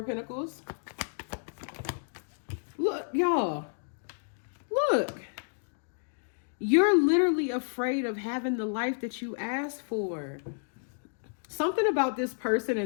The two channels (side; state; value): right; silent; digital silence